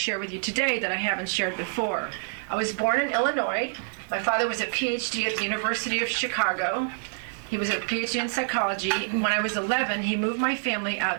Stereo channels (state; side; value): silent; left; digital silence